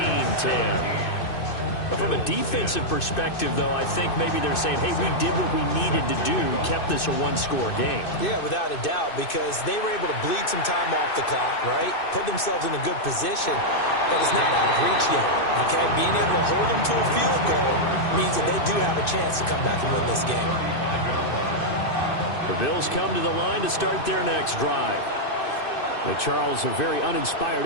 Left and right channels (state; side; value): late; right; 2.6 ms